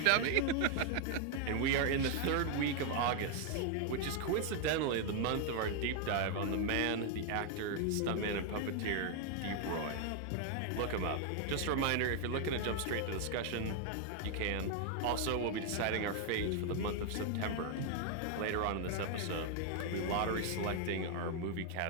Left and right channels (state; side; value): different; both; correlation 0.00